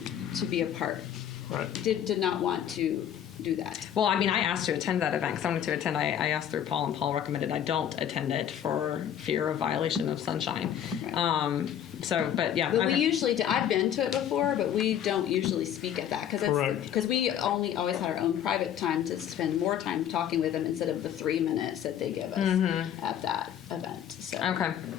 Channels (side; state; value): right; quieter; 9.9 dB